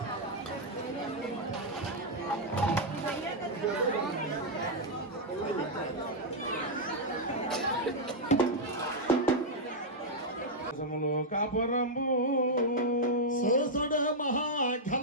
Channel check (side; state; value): both; normal; correlation -0.03